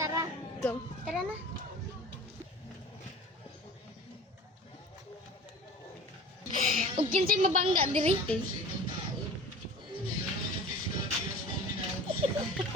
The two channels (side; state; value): both; normal; correlation 0.40